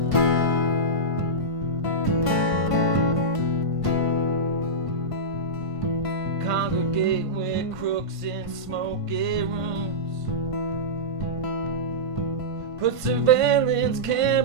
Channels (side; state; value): left; late; 1.5 ms